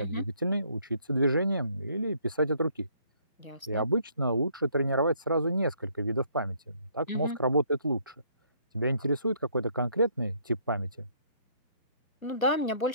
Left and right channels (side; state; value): both; inverted; correlation -0.65